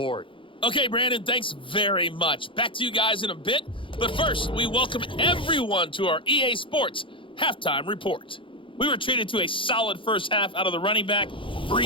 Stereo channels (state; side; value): late; right; 0.25 ms